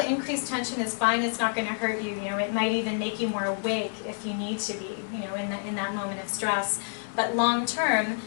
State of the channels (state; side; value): silent; right; digital silence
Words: tension is fine, it's not going to hurt you. You know, it might even make you more awake if you need to be, you know, in that moment of stress. But long term,